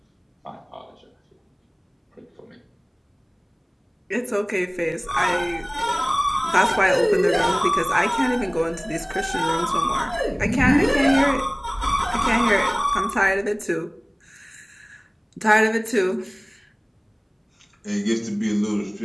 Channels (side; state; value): both; identical; correlation 1.00